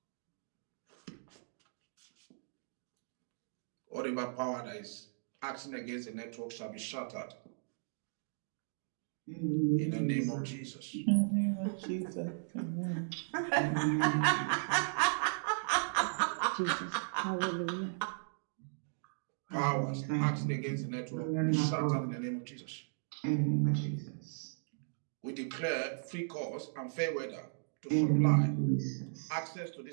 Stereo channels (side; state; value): left; silent; digital silence